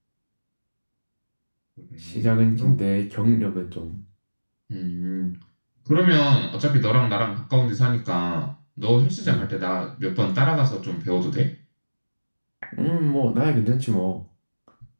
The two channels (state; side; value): inverted; both; correlation -1.00